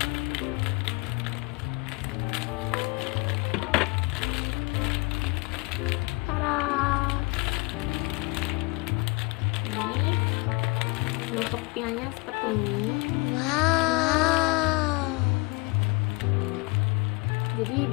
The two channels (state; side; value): quieter; right; 26.5 dB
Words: Bentuk pianya seperti ini. Wow. Jadi